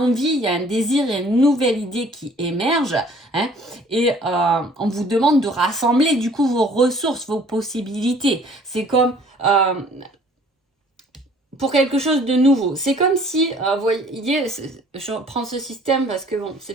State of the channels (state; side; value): normal; both; correlation 0.55